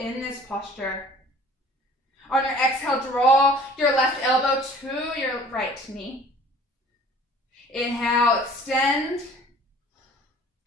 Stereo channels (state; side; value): normal; both; correlation 0.50